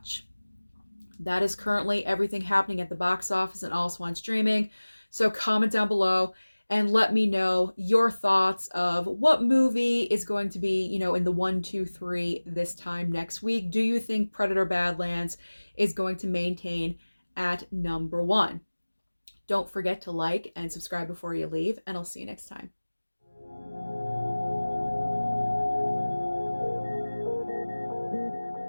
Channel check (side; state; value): both; inverted; correlation -1.00